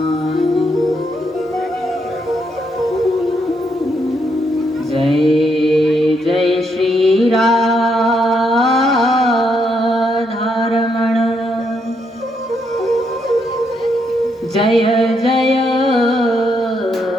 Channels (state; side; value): normal; both; correlation 0.77